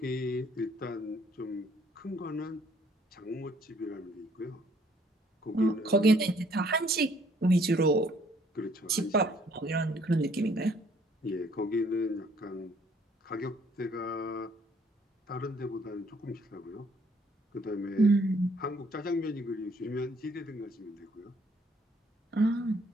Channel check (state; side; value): normal; both; correlation 0.63